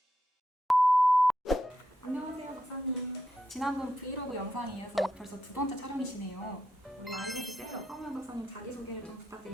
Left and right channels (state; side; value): normal; both; correlation 0.84